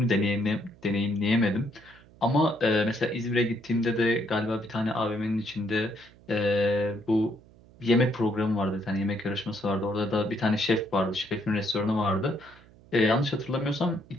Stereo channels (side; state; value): right; noise; hum, 25 dB below the sound